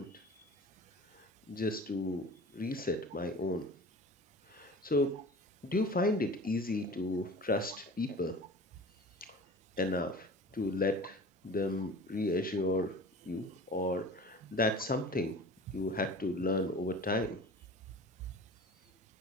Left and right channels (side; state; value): both; normal; correlation 0.40